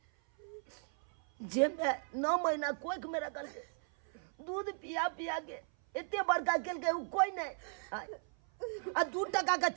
जे में 9 महीना कोख में रखल के दूध पिया के एते बड़का केल के उ कोई नहीं। आ 2 टका का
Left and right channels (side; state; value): left; silent; 54 dB below the other